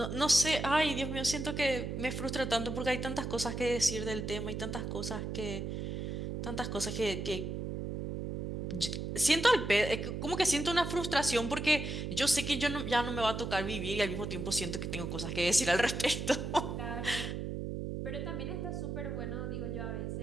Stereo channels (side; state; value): right; noise; hum, 4 dB below the sound